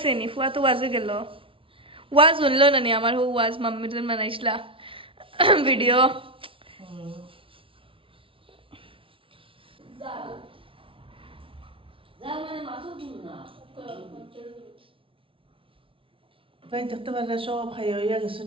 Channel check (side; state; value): left; late; 0.25 ms